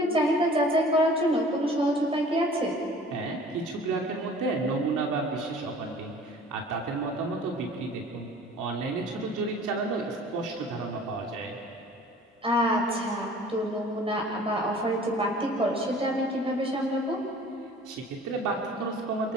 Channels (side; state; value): both; normal; correlation 0.47